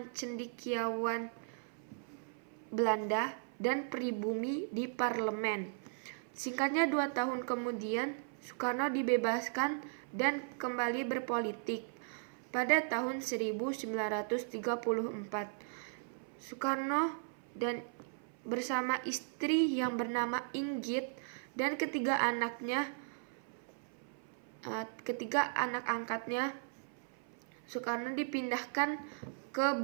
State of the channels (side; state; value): left; silent; 53 dB below the other